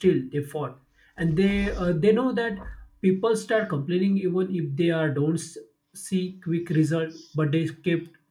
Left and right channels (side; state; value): both; identical; correlation 1.00